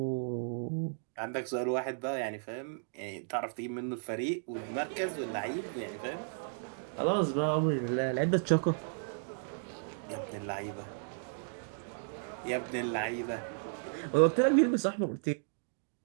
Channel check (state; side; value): silent; left; digital silence